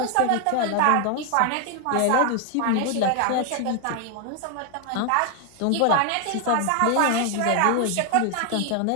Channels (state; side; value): different; both; correlation 0.00